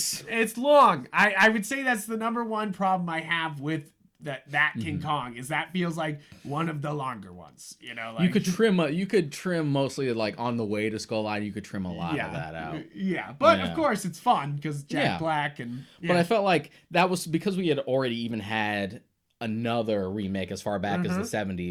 It's long. I would say that's the number one problem I have with that King Kong, is that feels like one of the longer ones. You know, like, you could trim mostly like on the way to Skull Island. You could trim a lot of that out. Yeah, but of course it's fun because Jack Black and. Yeah. But I felt like that was because we had already even had another remake as far back as the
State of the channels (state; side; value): identical; both; correlation 1.00